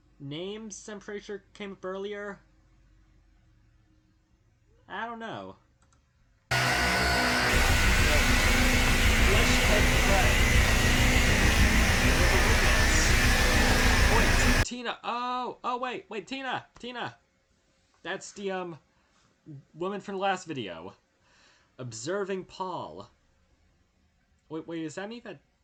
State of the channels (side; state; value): both; identical; correlation 1.00